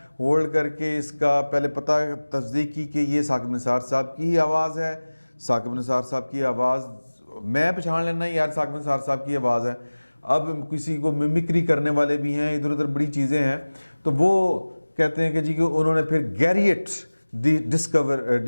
ہولڈ کر کے اس کا پہلے پتہ تصدیق کی کہ یہ ثاقب نثار صاحب کی ہی آواز ہے. ثاقب نثار صاحب کی آواز میں پہچان لینا یار ثاقب نثار صاحب کی آواز ہے. اب کسی کو ممکری کرنے والے بھی ہیں, ادھر ادھر بڑی چیزیں ہیں. تو وہ کہتے ہیں کہ جی کہ انہوں نے پھر گیریٹ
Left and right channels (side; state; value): both; inverted; correlation -1.00